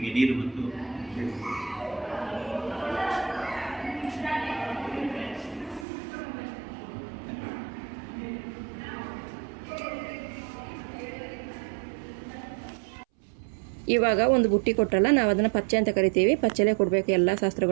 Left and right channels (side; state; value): left; drops out; at 5.9 s